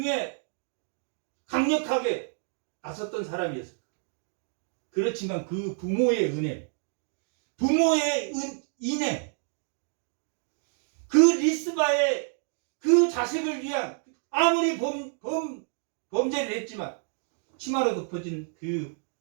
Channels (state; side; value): silent; left; 55 dB below the other